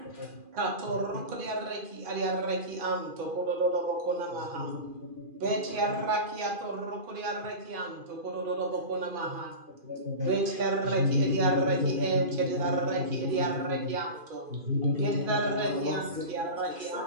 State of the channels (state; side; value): late; left; 2.5 ms